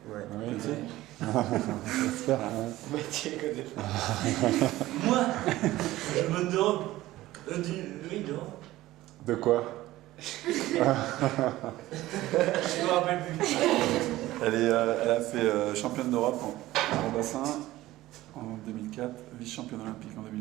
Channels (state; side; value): quieter; left; 16.5 dB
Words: Ouais. Oui. J'espère. Mathieu connaît pas. Moi, je me demande. Oui, non. De quoi? Je me rappelle plus. Elle a fait championne d'Europe en bassin en 2004, vice-championne olympique en